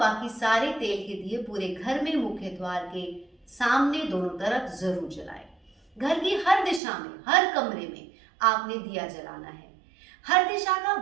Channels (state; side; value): drops out; left; at 6.8 s